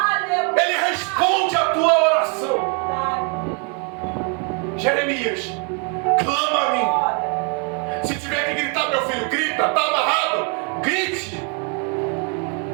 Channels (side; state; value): left; quieter; 37.2 dB